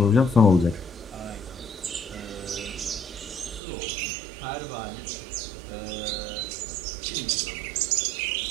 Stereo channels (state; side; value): drops out; left; at 3.6 s